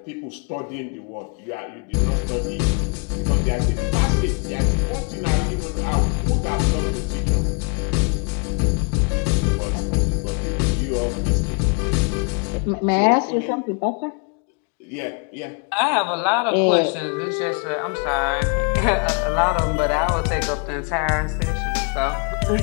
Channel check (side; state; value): right; quieter; 37.0 dB